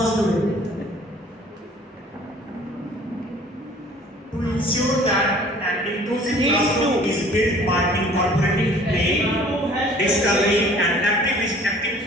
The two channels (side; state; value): both; normal; correlation 0.52